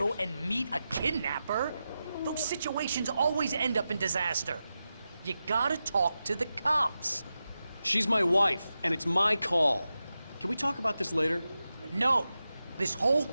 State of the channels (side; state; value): both; inverted; correlation -0.91